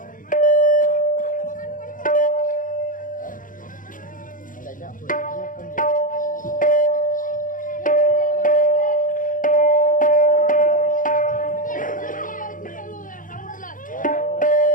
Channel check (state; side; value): late; right; 0.39 ms